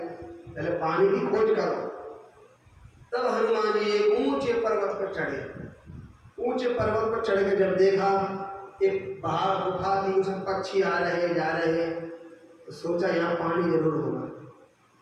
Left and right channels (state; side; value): identical; both; correlation 1.00